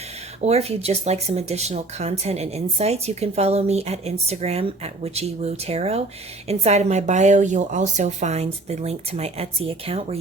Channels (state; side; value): quieter; left; 3.1 dB